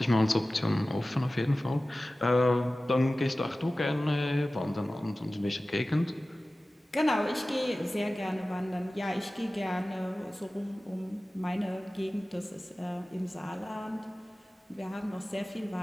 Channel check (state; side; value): normal; both; correlation 0.96